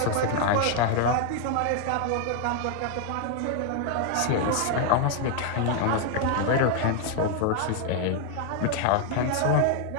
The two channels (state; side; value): different; both; correlation 0.00